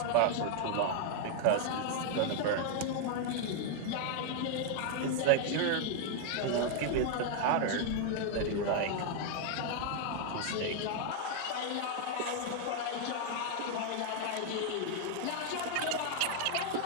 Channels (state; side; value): different; both; correlation 0.00